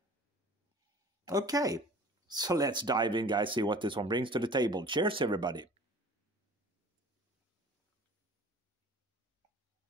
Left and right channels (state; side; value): normal; both; correlation 0.45